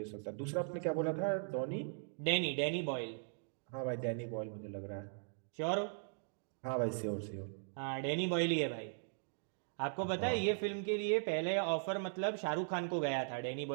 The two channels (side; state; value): left; silent; digital silence